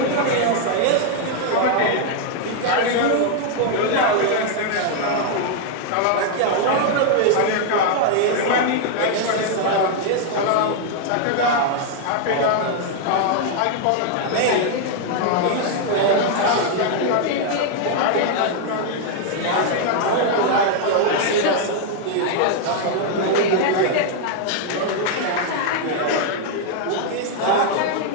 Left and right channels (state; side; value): different; both; correlation 0.00